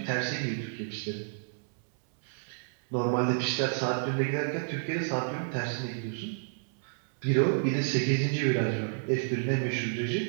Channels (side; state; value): left; silent; digital silence